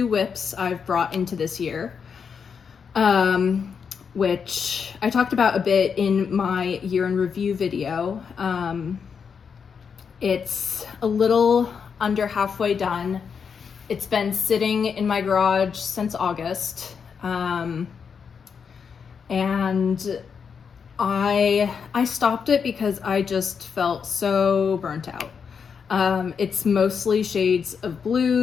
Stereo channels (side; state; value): right; quieter; 6.4 dB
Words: whips I've brought into this year, which I talked about a bit in my year in review video. It's a little under halfway done. It's been sitting in my garage since August, and I stopped it because I just felt so burnt out. It's mostly shades of